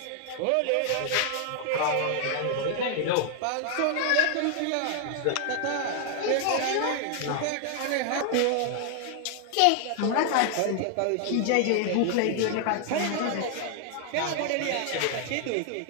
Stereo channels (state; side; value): different; both; correlation 0.00